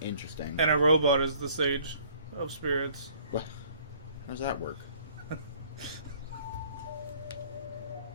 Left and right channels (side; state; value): both; inverted; correlation -0.57